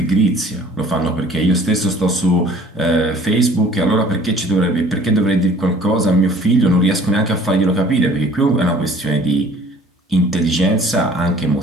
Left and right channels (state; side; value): normal; both; correlation 0.52